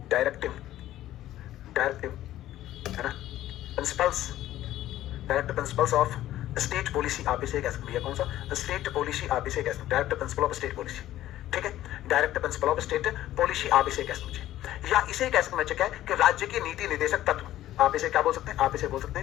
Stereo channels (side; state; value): right; quieter; 13.8 dB